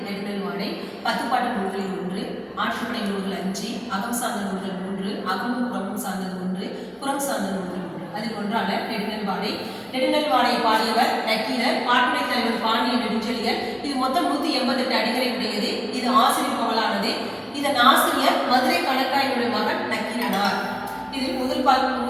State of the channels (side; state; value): both; identical; correlation 1.00